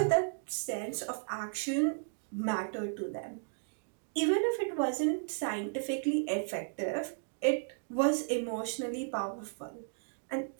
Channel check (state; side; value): silent; left; digital silence